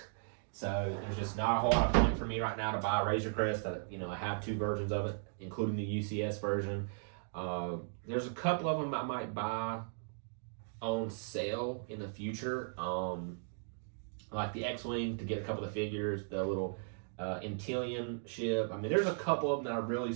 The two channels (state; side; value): silent; left; digital silence